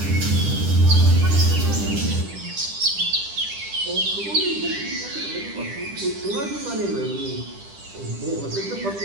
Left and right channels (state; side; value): late; left; 10 ms